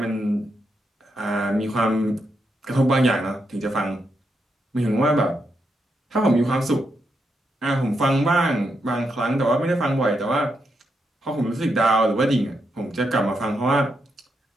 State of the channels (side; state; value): both; normal; correlation 0.82